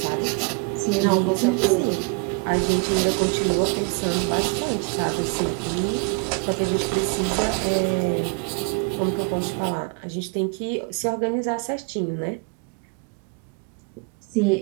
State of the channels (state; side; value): quieter; left; 34.1 dB